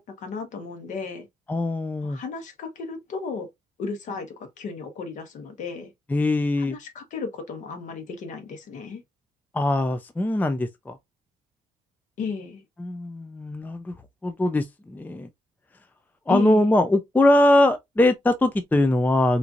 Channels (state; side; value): normal; both; correlation 0.86